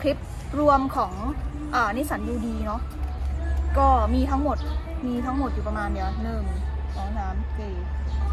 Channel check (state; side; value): identical; both; correlation 1.00